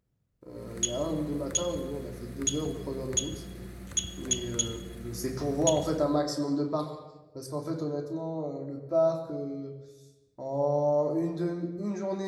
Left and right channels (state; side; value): identical; both; correlation 1.00